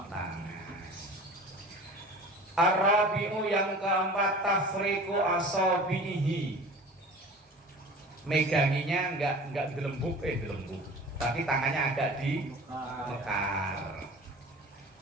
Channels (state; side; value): normal; both; correlation 0.40